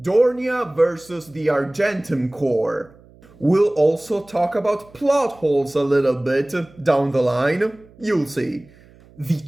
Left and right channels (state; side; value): noise; right; hum, 26 dB below the sound